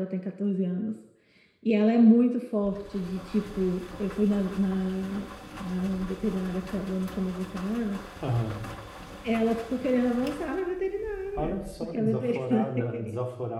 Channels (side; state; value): both; identical; correlation 1.00